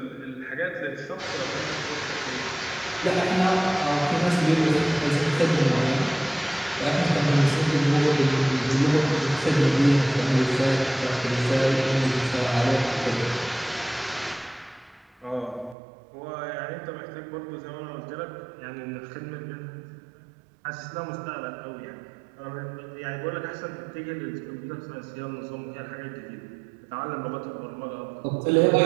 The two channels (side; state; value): left; drops out; at 15.8 s